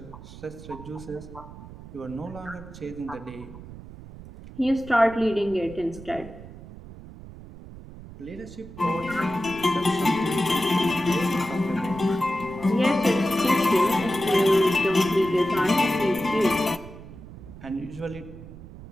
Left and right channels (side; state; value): right; noise; rumble, 15 dB below the sound